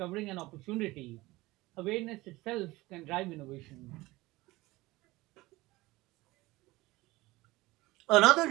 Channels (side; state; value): left; quieter; 19.9 dB